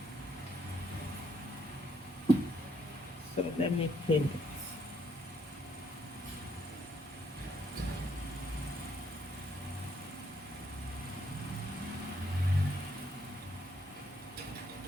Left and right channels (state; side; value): normal; both; correlation 0.71